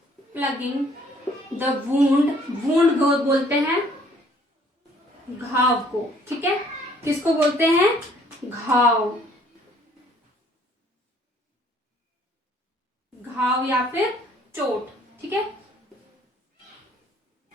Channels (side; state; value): both; normal; correlation 0.60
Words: the wound को बोलते हैं घाव को। ठीक है, किसको बोलते हैं? घाव या फिर चोट। ठीक है,